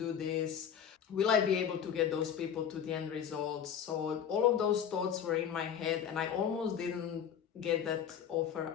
this? Will I be able to get those people to the end results? So all of those thoughts were in my head and I almost didn't get that offer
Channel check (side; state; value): right; quieter; 8.4 dB